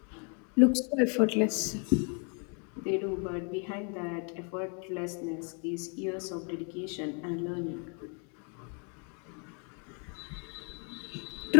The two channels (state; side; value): quieter; right; 38.5 dB